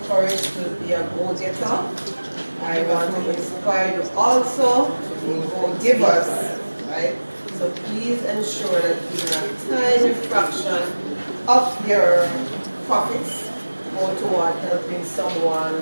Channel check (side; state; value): both; inverted; correlation -1.00